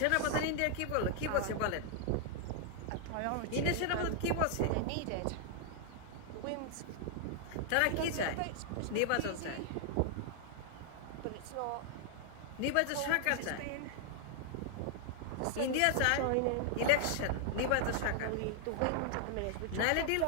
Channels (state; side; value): different; both; correlation 0.00